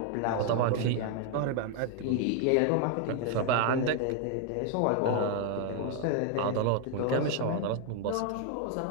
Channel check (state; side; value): different; both; correlation 0.00